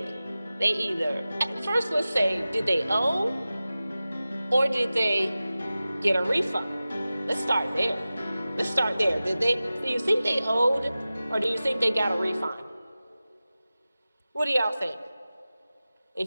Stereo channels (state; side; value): inverted; both; correlation -0.96